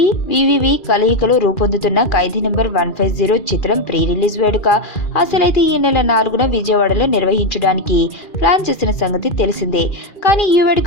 వివివి కలయికలో రూపొందుతున్న ఖైదీ నంబర్ 150 చిత్రం ప్రీ రిలీజ్ వేడుక అసలైతే ఈ నెల 4న విజయవాడలో నిర్వహించడానికి ప్లాన్ చేసిన సంగతి తెలిసిందే. కానీ ఈ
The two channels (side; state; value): right; late; 2.4 ms